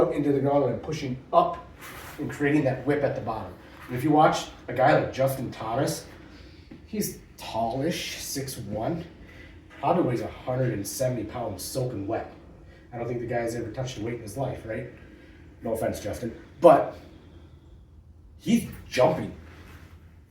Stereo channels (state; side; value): identical; both; correlation 1.00